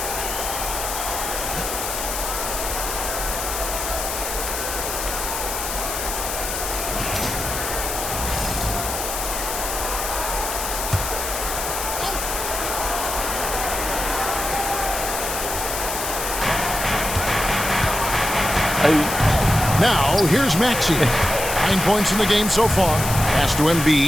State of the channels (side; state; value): left; noise; hiss, 4 dB below the sound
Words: Now, here's Maxey. 9 points in the game so far. Pass to